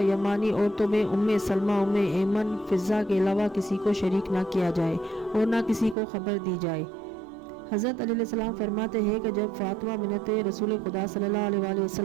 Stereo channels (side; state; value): left; drops out; at 6.0 s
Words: یمانی، عورتوں میں ام سلمہ، ام ایمن، فضہ کے علاوہ کسی کو شریک نہ کیا جائے اور نہ کسی کو خبر دی جائے۔ حضرت علی علیہ السلام فرماتے ہیں کہ جب فاطمہ بنت رسول خدا صلی اللہ علیہ